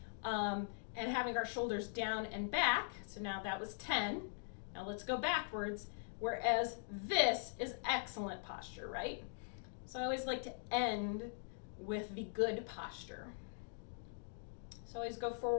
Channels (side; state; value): right; silent; digital silence